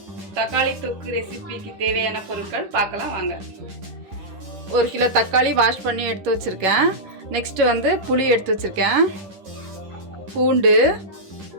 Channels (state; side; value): late; left; 10 ms